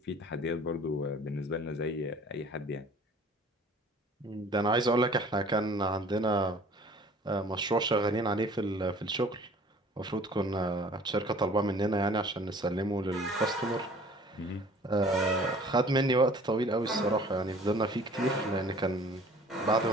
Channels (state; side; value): normal; both; correlation 0.50